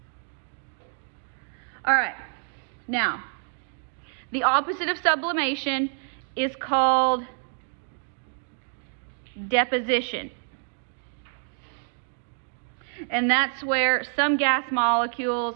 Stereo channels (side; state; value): left; silent; 57 dB below the other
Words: All right, now the opposite of sublimation is called deposition. And that's where some gas molecules